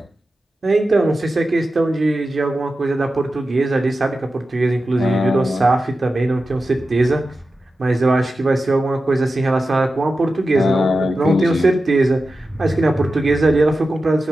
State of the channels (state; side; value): normal; both; correlation 0.92